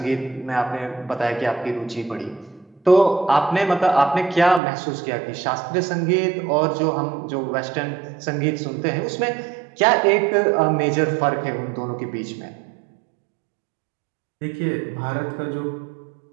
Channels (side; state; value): left; drops out; at 4.6 s